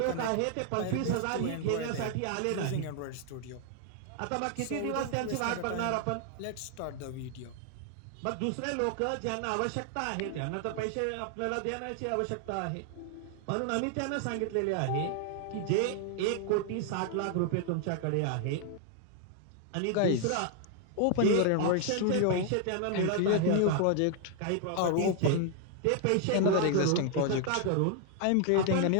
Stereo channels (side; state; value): both; different; correlation 0.00